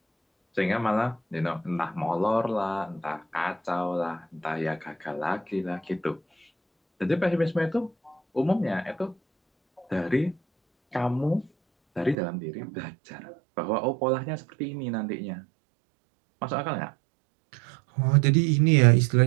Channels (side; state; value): left; drops out; at 12.2 s